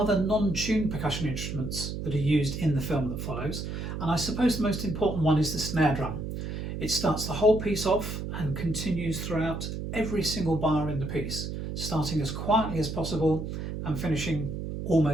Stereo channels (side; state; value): right; noise; hum, 5 dB below the sound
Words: non-tuned percussion instruments that are used in the film that follows, and I suppose the most important one is the snare drum. It starts the whole piece off and continues throughout every single bar in the piece, starting as quietly as possible and finishing